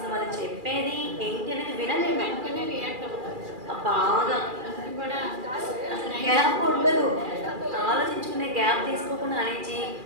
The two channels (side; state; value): left; late; 2.4 ms